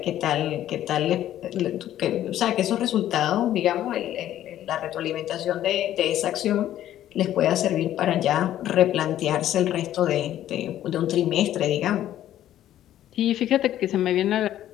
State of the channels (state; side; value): quieter; right; 12.3 dB